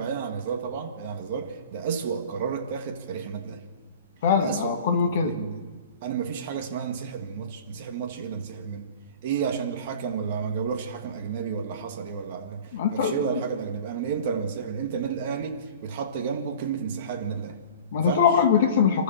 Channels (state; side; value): inverted; both; correlation -0.40